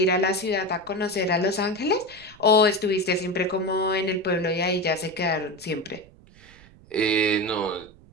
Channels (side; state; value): right; noise; rumble, 24 dB below the sound